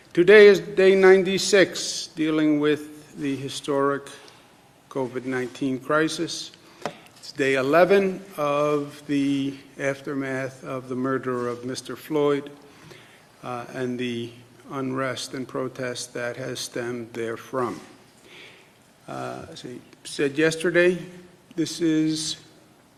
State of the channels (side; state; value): both; identical; correlation 1.00